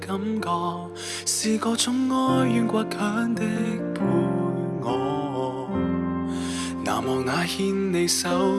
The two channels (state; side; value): identical; both; correlation 1.00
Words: 覺，是各種哀怨倔強的陪我，難忘那牽你手